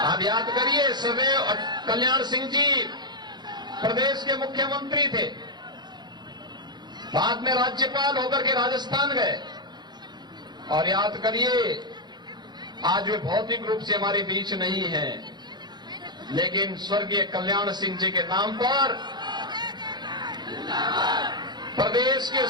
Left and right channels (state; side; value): late; left; 0.21 ms